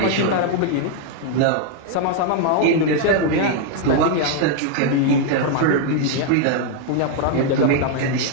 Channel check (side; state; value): both; different; correlation 0.00